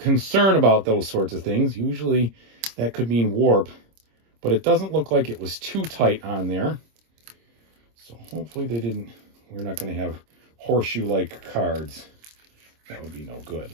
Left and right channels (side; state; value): left; late; 26 ms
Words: about those sorts of things. Usually that could mean warp. But it doesn't look like it was too tight on there. So hopefully they didn't, we're not going to have horseshoe-like cards. That would be no good.